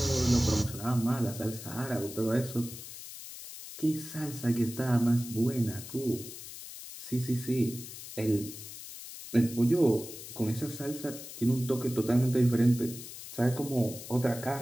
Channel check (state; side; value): noise; left; hiss, 12 dB below the sound